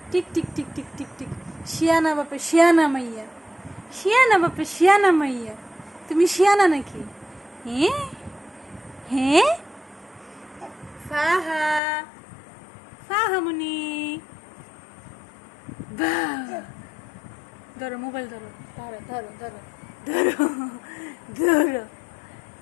tick tick tick tick tick tick. শিয়ানা বাপে শিয়ানা মাইয়া, শিয়ানা বাপে শিয়ানা মাইয়া। তুমি শিয়ানা নাকি? হ্যাঁ হ্যাঁ। ফাহা, ফাহামুনি, বাহ। ধরো মোবাইল ধরো, ধরো ধরো ধরো ধরো ধরো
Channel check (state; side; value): drops out; right; at 11.8 s